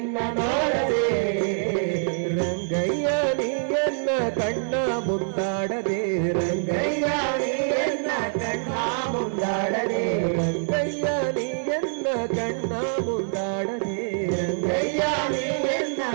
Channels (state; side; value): silent; left; 62 dB below the other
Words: ನೋಡದೆ ರಂಗಯ್ಯ ನೀಯನ್ನ ಕಣ್ಣ ಮುಂದಾಡದೆ ರಂಗಯ್ಯ ನೀಯನ್ನ ಕಣ್ಣ ಮುಂದಾಡದೆ ರಂಗಯ್ಯ ನೀಯನ್ನ ಕಣ್ಣ ಮುಂದಾಡದೆ ರಂಗಯ್ಯ ನೀಯನ್ನ